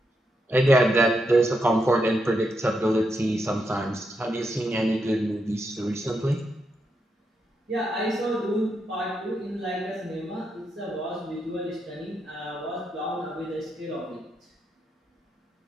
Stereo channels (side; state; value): both; normal; correlation 0.82